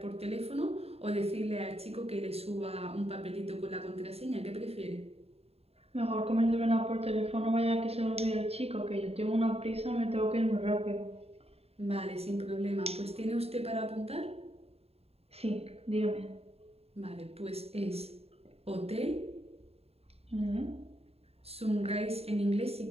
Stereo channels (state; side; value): late; left; 0.29 ms